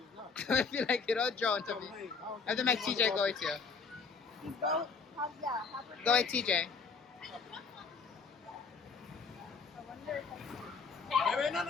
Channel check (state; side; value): quieter; right; 5.1 dB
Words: not. I feel like you don't drown, Tavia. I have to make TJ go with you. go. Go with TJ. Wait,